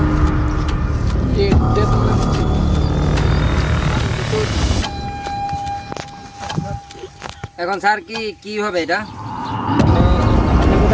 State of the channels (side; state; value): both; identical; correlation 1.00